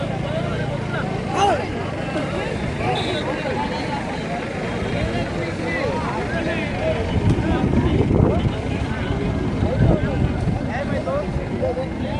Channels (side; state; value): both; identical; correlation 1.00